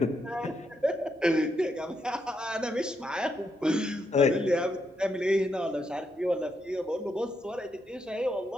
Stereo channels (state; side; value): normal; both; correlation 0.80